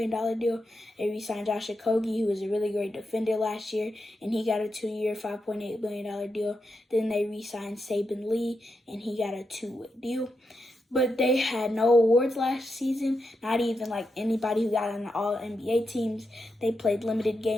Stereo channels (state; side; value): normal; both; correlation 0.86